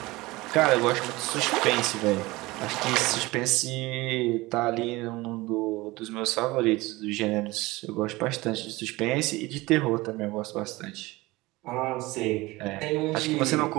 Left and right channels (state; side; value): quieter; left; 20.8 dB